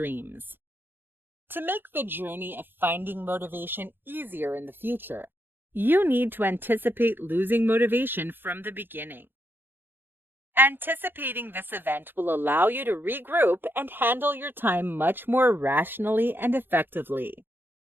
To make the journey of finding motivation easier in the future, you need to anticipate losing motivation from the beginning. Anticipating this event will allow you to regroup and handle your time much more rationally and effectively.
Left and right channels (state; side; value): late; left; 0.099 ms